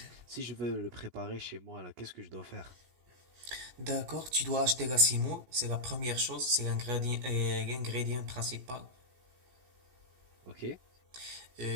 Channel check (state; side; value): late; left; 16 ms